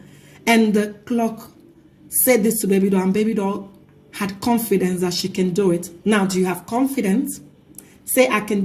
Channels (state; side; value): identical; both; correlation 1.00